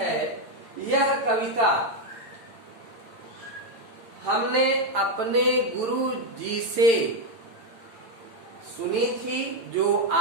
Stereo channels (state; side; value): late; left; 8.9 ms